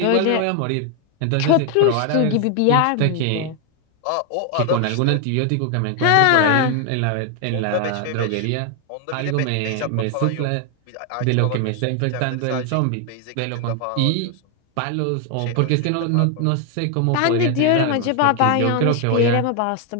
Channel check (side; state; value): both; different; correlation 0.01